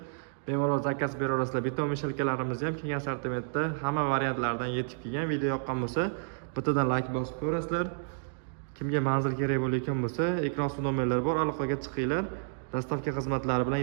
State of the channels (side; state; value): left; silent; digital silence